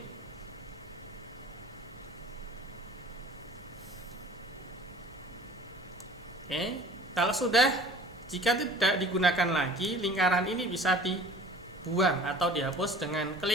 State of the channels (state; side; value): normal; both; correlation 0.45